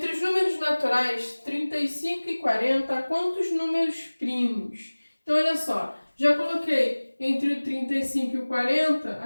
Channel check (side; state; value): both; inverted; correlation -1.00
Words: os números naturais 35 e 40, quantos números primos? Então, olha só, já coloquei entre o 35 e o 40,